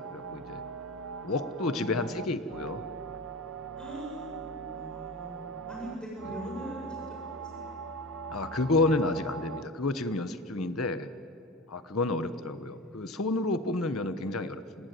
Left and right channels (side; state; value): both; normal; correlation 0.30